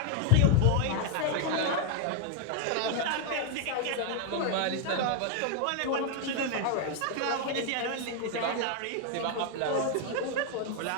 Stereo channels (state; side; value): different; both; correlation 0.00